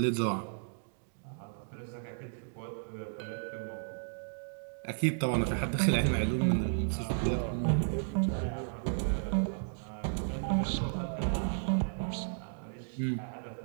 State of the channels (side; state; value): left; silent; digital silence